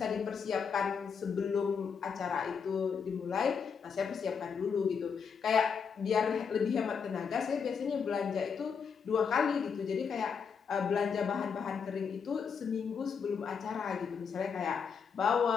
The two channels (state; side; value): quieter; right; 6.3 dB